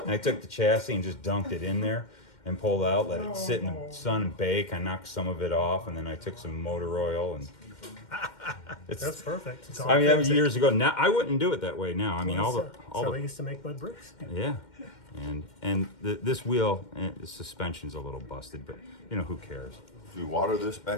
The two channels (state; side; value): late; right; 2.1 ms